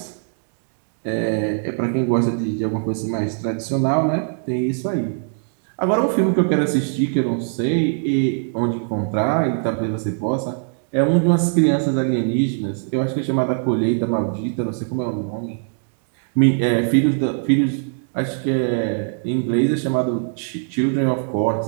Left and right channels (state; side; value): silent; left; digital silence